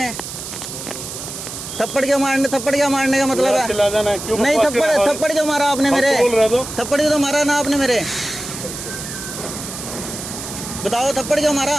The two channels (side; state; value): right; noise; hiss, 9 dB below the sound